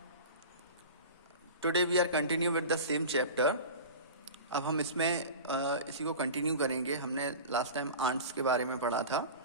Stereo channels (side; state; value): both; inverted; correlation -0.33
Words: today we are continue with the same chapter. अब हम इसमें इसी को continue करेंगे. हमने last time ants के बारे में पढ़ा था,